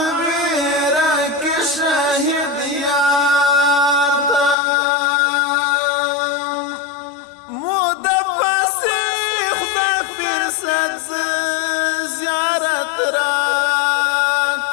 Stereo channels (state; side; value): drops out; right; at 4.5 s